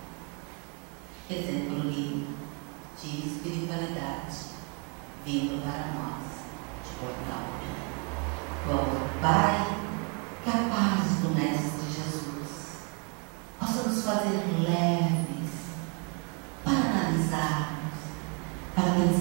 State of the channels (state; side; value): quieter; left; 35.5 dB